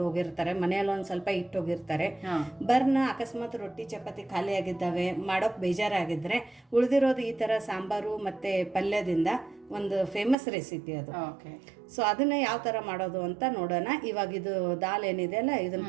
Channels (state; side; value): drops out; left; at 10.4 s